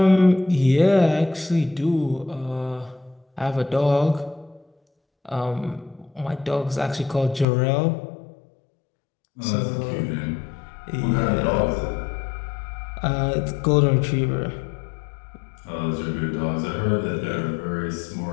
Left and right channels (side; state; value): right; drops out; at 7.5 s